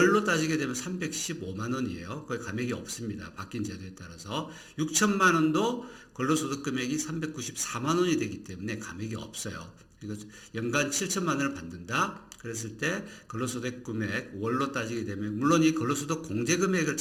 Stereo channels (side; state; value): both; identical; correlation 1.00